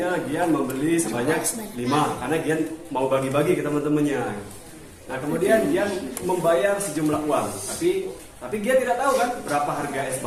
Gian membeli sebanyak 5 karena Gian mau bagi-bagi ke teman-temannya. Nah, kemudian Gian membayar sejumlah uang, tapi Gian tidak tahu kan berapa harga es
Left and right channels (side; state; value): both; identical; correlation 1.00